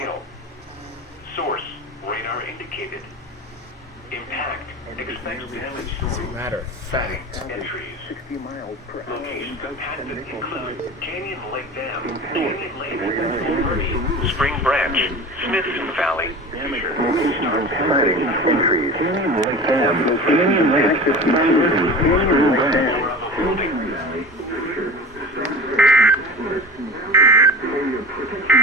Source, radar indicated. Impact, expect damage to As a matter of fact, entries. 60 miles per hour. Locations impacted include Canyon Lake Dam, Canyon Lake, Murray, Spring Branch, Smithson Valley. Exciting entries. Canyon Lake Dam, Canyon Lake, Canyon Lake.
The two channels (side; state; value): both; normal; correlation 0.33